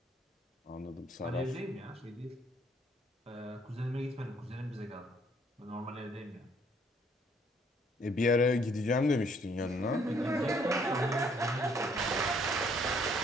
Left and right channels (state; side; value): normal; both; correlation 0.65